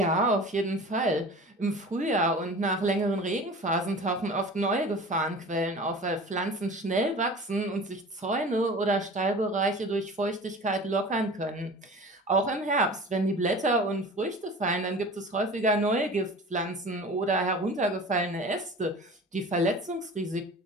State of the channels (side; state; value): both; normal; correlation 0.39